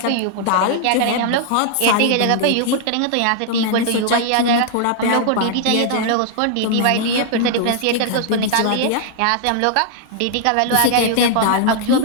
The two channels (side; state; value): both; different; correlation 0.00